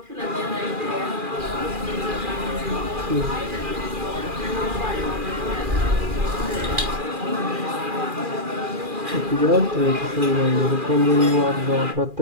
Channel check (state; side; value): late; left; 2.4 ms